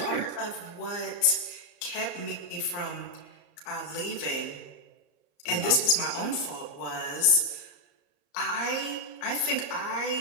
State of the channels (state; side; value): late; right; 34 ms